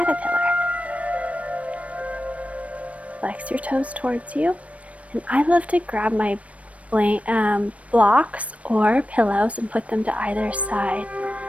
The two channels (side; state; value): left; late; 0.065 ms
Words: Flex your toes towards you. And I love to grab my blocks or pillows and put them to either side